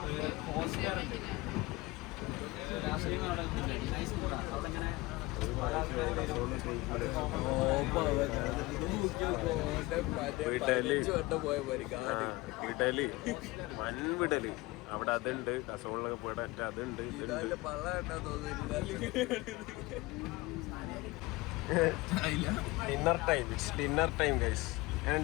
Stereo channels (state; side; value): quieter; right; 21.6 dB